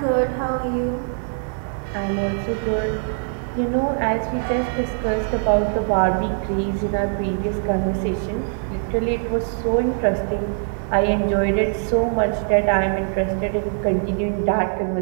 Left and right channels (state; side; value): silent; left; 61 dB below the other